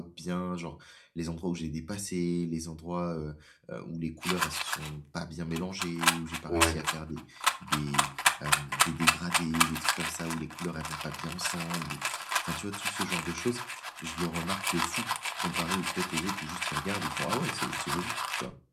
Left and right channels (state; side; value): identical; both; correlation 1.00